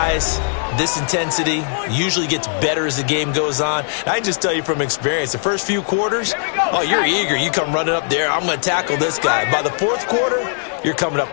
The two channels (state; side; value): silent; right; 67 dB below the other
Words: this intensity usually gets better as the game goes on. I can just tell you from experience, the first few quarters, oh, you're eager. You come running up there, I'm going to tackle this guy. By the 4th quarter, you're coming